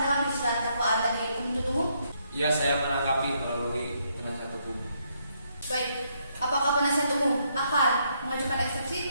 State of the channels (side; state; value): both; inverted; correlation -0.74